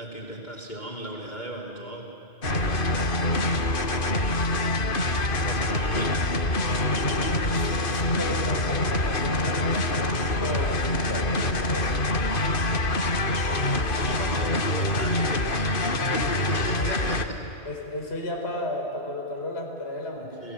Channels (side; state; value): right; late; 2.5 ms